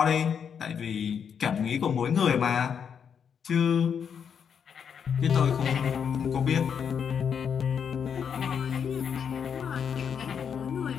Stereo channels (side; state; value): right; quieter; 7.3 dB